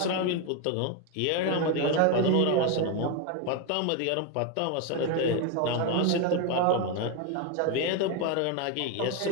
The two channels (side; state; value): both; different; correlation 0.02